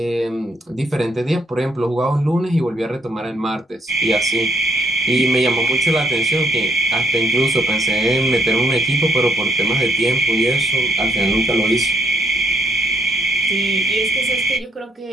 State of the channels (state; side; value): normal; both; correlation 0.71